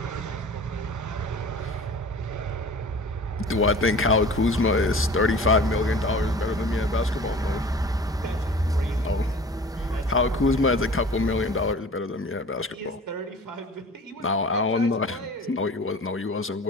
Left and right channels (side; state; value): both; normal; correlation 0.42